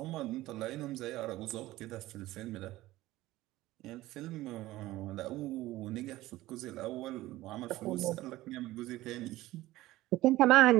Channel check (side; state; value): left; quieter; 17.0 dB